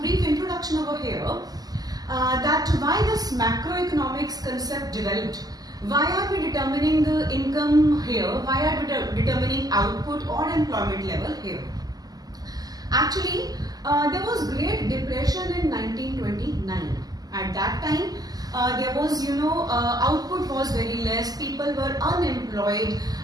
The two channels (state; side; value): late; left; 0.18 ms